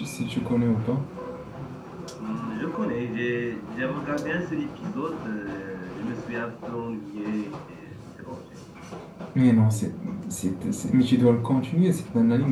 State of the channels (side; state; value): both; identical; correlation 1.00